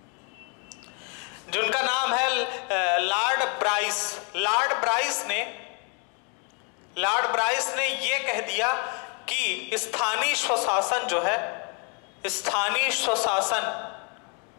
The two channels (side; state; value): right; quieter; 36.7 dB